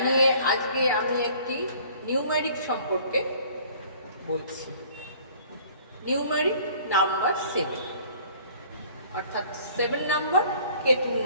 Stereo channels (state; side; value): inverted; both; correlation -0.53